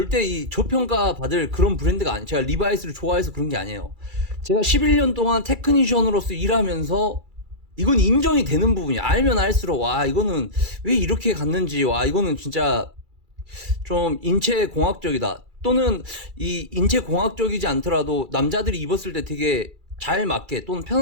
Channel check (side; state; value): left; late; 2.3 ms